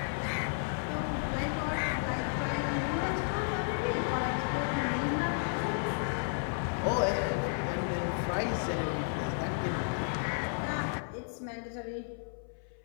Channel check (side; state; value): right; silent; 56 dB below the other